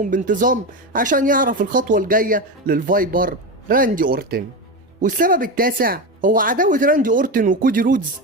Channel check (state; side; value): normal; both; correlation 0.18